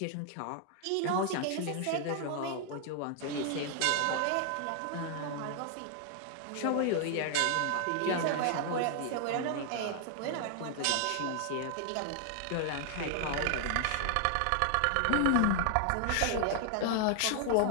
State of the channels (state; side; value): different; both; correlation 0.00